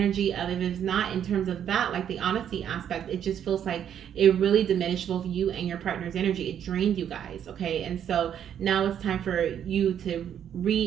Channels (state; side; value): quieter; left; 9.3 dB